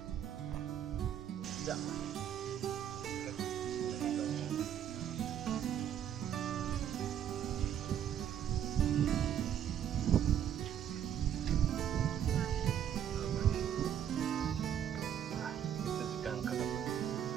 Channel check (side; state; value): left; quieter; 9.7 dB